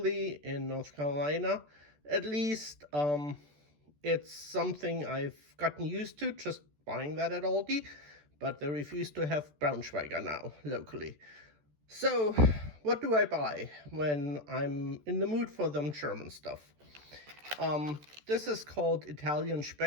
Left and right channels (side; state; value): left; late; 14 ms